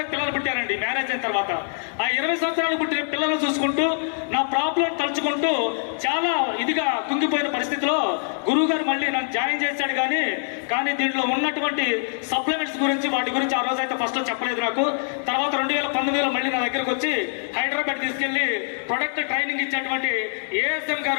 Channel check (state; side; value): silent; right; digital silence